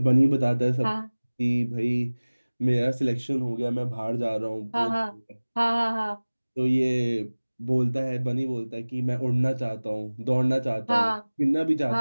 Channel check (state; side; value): inverted; both; correlation -1.00